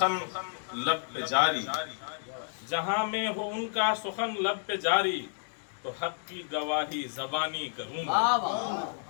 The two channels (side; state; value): right; silent; digital silence